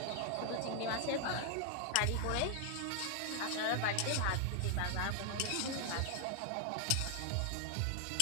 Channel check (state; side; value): different; both; correlation 0.00